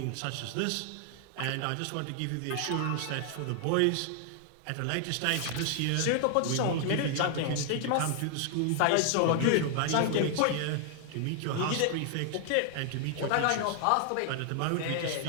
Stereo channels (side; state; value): both; different; correlation 0.00